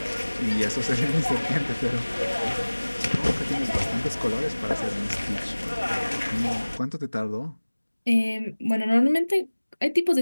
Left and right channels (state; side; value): inverted; both; correlation -1.00